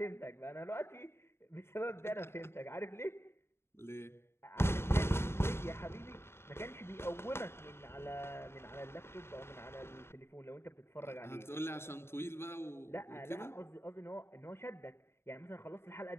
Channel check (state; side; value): late; right; 0.12 ms